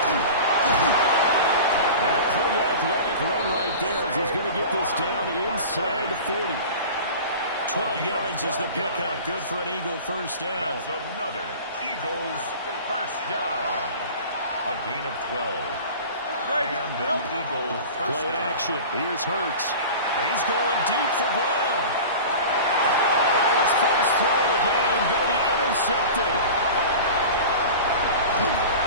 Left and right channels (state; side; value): inverted; both; correlation -0.36